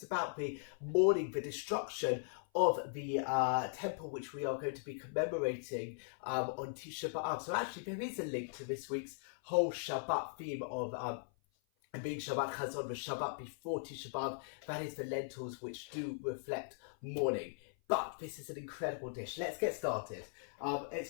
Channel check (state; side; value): silent; right; 52 dB below the other